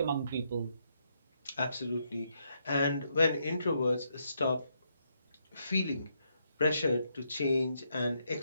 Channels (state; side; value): inverted; both; correlation -0.78